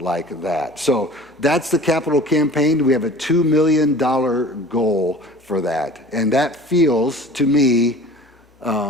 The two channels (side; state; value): both; normal; correlation 0.43